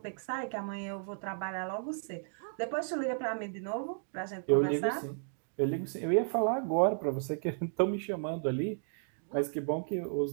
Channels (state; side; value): silent; left; digital silence